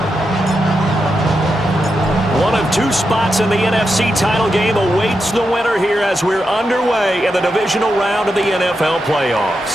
Two spots in the NFC title game awaits the winner here as we're underway in the divisional round of the NFL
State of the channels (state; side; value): normal; both; correlation 0.86